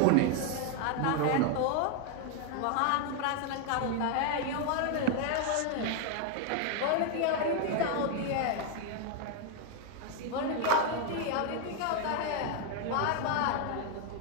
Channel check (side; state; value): both; different; correlation 0.01